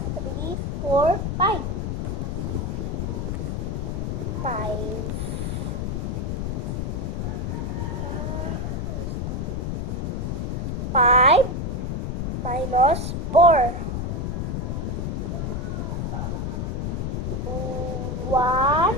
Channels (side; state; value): left; noise; rumble, 1 dB below the sound